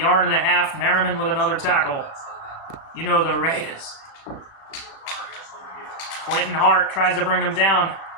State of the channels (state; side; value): late; right; 36 ms